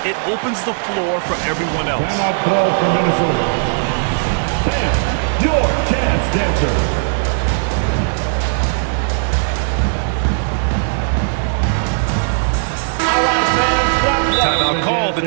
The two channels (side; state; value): left; silent; 62 dB below the other